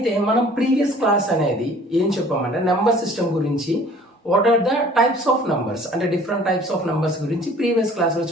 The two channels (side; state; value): both; normal; correlation 0.51